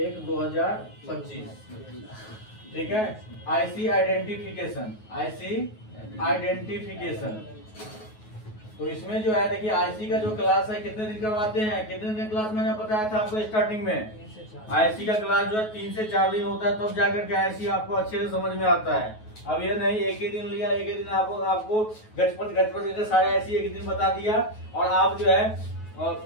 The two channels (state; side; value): late; right; 9.3 ms